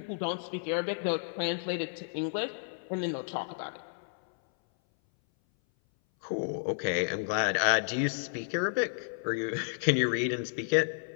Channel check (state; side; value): silent; right; 57 dB below the other